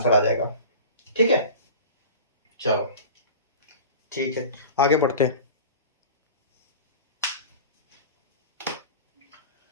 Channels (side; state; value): both; inverted; correlation -0.36